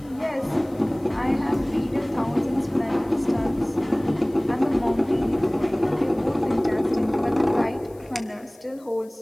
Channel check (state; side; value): noise; left; hiss, 29 dB below the sound